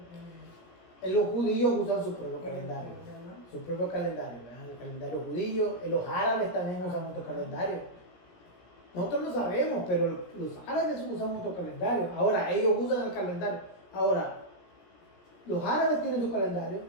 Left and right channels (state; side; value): late; right; 17 ms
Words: Los judíos usan su propio calendario, ¿verdad? su propio calendario, ¿verdad? El calendario judío, los árabes también usan otro calendario. Nosotros lo sabemos, pero los árabes usan otro calendario. Ahora, ellos usan el calendario. Ahora, los árabes tienen su calendario,